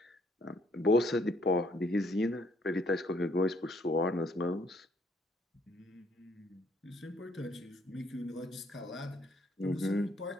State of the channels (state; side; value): normal; both; correlation 0.67